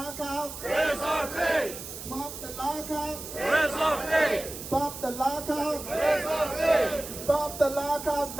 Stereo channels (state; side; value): noise; right; hiss, 10 dB below the sound